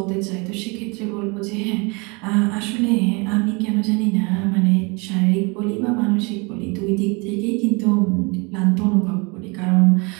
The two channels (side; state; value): left; quieter; 29.4 dB